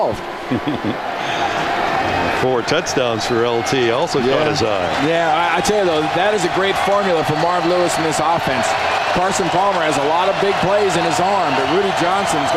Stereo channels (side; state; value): both; identical; correlation 1.00